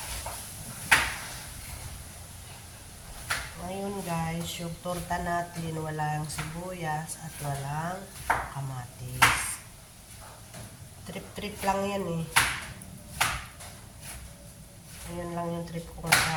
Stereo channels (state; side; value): identical; both; correlation 1.00